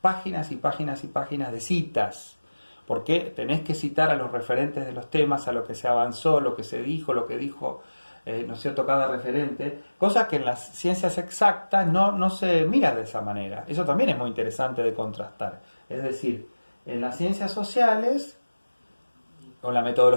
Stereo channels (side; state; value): both; inverted; correlation -1.00